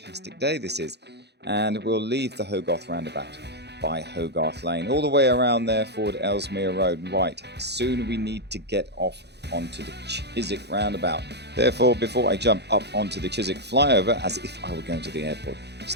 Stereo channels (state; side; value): late; left; 0.49 ms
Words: day this is. And we'll leave the Hogarth roundabout by Hogarth Lane, all the way around there, forward Ellesmere Road. Right, soon we need to get off onto the Chiswick roundabout. Therefore, before I jump up onto the Chiswick flyover, as if I were going to the airport,